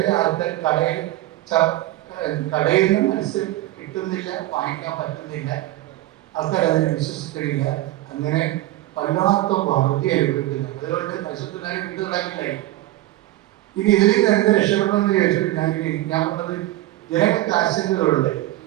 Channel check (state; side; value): quieter; left; 16.1 dB